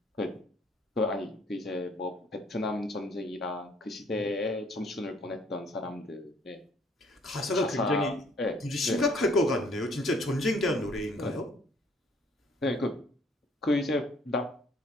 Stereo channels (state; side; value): normal; both; correlation 0.61